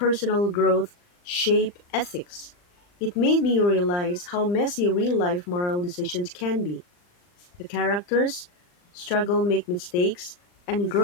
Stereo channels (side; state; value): right; late; 39 ms